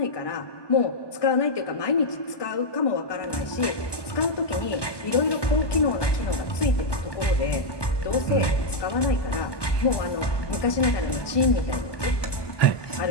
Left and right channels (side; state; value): right; late; 1.2 ms